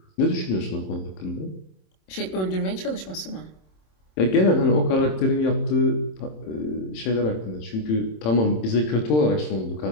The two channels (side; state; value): right; late; 27 ms